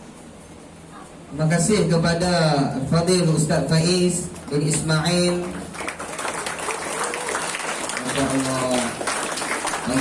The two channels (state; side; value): identical; both; correlation 1.00